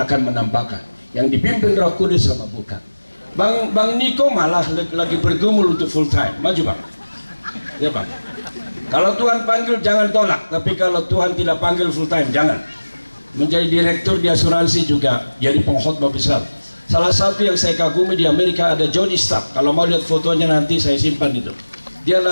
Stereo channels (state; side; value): inverted; both; correlation -1.00